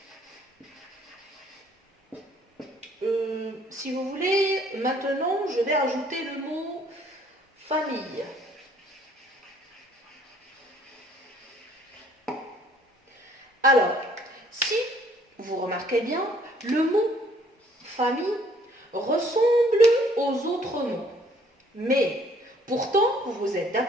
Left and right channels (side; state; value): both; normal; correlation 0.61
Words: Si vous voulez, maintenant, je vais ajouter le mot famille. Alors, si vous remarquez bien, le mot famille ressemble aux autres mots. Mais pourtant, vous êtes